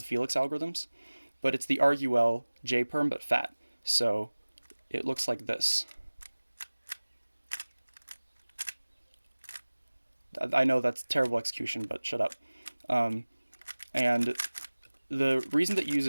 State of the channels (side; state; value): both; inverted; correlation -1.00